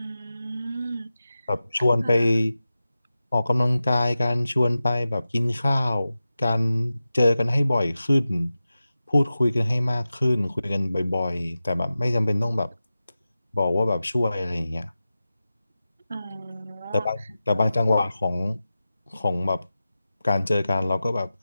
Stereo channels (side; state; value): both; inverted; correlation -0.94